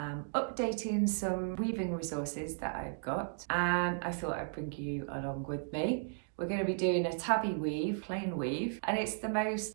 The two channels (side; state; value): left; silent; digital silence